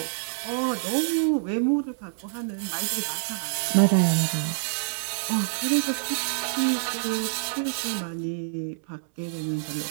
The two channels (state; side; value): silent; left; 60 dB below the other